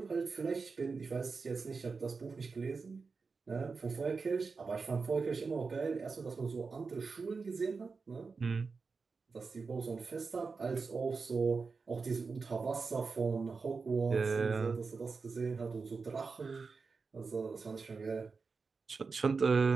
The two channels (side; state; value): left; quieter; 4.7 dB